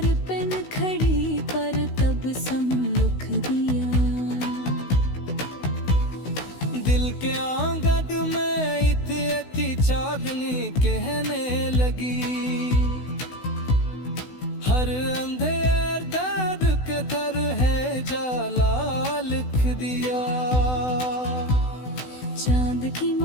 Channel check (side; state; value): right; late; 16 ms